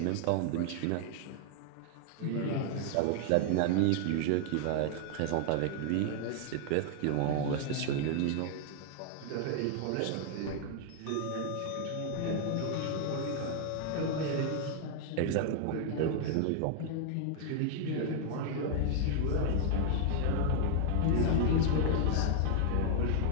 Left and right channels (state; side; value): different; both; correlation 0.00